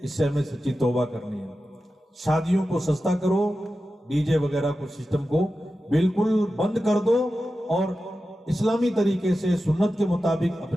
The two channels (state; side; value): normal; both; correlation 0.92